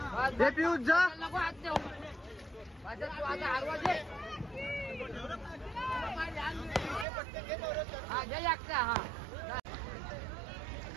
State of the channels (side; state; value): left; drops out; at 7.1 s